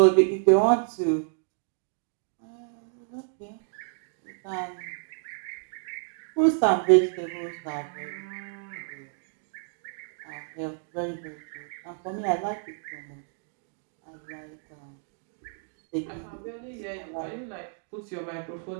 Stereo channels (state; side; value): silent; left; 55 dB below the other